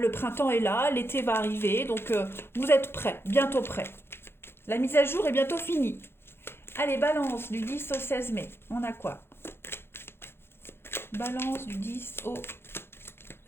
printemps est là, l'été va arriver, donc vous êtes prêt, bientôt prêt. La mise à jour est bientôt finie. Allez, balance du 10 au 16 mai, on a quoi? Balance du 10 au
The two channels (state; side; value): late; right; 0.11 ms